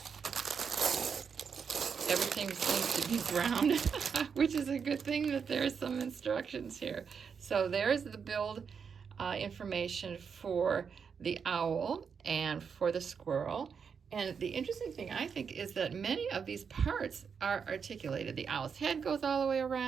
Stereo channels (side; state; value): left; quieter; 6.4 dB